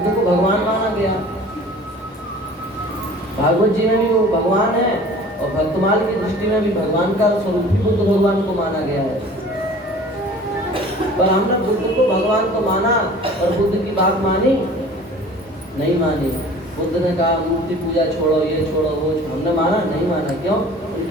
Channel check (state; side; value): normal; both; correlation 0.45